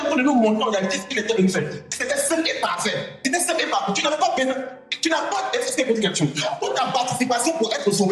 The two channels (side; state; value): both; identical; correlation 1.00